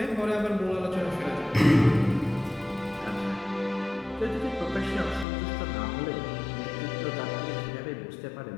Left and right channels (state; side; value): drops out; right; at 5.2 s